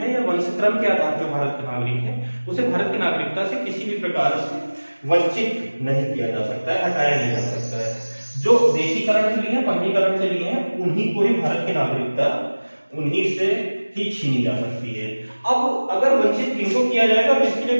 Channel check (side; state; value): both; inverted; correlation -1.00